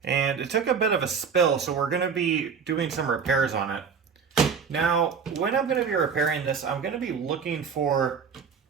and it took a bit of a spill, so we're going to be doing some repairs on it. Now, when I'm going to be repairing this, I'm going to be looking for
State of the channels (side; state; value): left; quieter; 6.2 dB